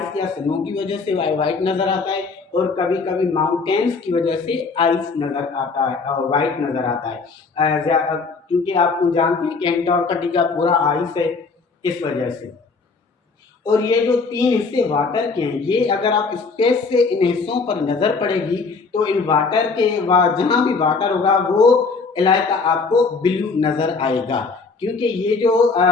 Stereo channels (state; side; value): quieter; right; 4.4 dB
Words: या स्नो की वजह से वाइट नज़र आता है और कभी कभी माउंटेन्स की वजह से आइस नज़र आता है और वाइट नज़र आता है। क्योंकि आप जानते हैं कि एंटार्कटिका पूरा आइस है, इस वजह से। और ये जो 3 हिस्से वाटर के हैं, ये अगर आप स्पेस से इन हिस्सों पर नज़र पड़ेगी तो इन वाटर के जहाँ भी वाटर होगा वो इलाका आपको ब्लू नज़र आएगा। क्योंकि ये जो